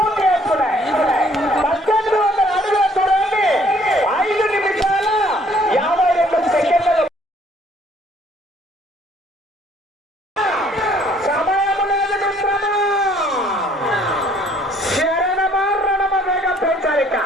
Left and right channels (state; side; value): normal; both; correlation 0.61